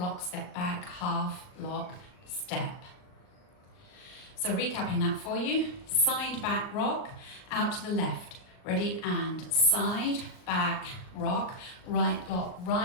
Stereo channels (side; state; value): right; late; 39 ms